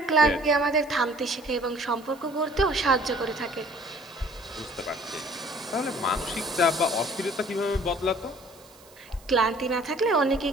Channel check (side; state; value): right; noise; hiss, 25 dB below the sound